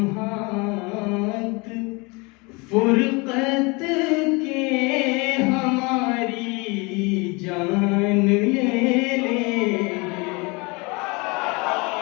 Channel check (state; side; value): quieter; right; 27.7 dB